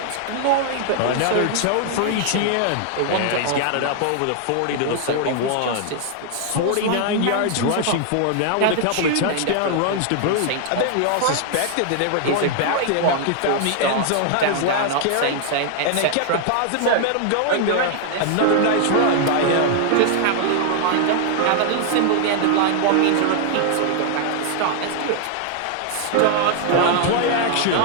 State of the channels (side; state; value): both; different; correlation 0.00